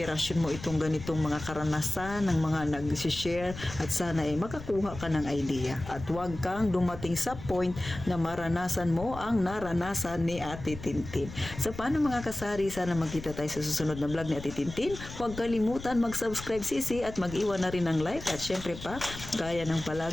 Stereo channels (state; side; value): noise; left; rumble, 12 dB below the sound